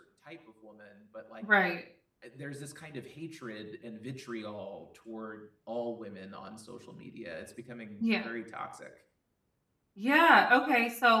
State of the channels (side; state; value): both; identical; correlation 1.00